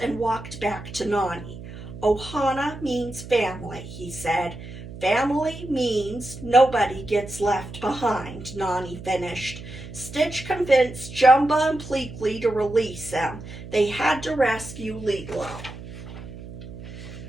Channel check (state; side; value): noise; right; hum, 13 dB below the sound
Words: walked back to Nani. Ohana means family, he said. Family means nobody gets left behind, Nani finished. Stitch convinced Jumba and Pleakley to release him. They had to rescue Lilo.